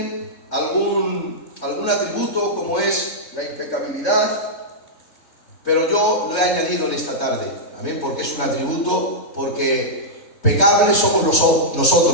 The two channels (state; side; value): late; right; 3.4 ms